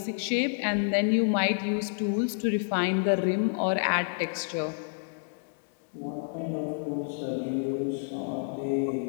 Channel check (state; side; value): silent; right; digital silence